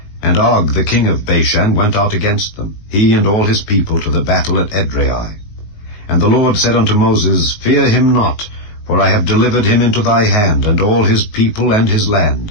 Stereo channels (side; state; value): right; late; 19 ms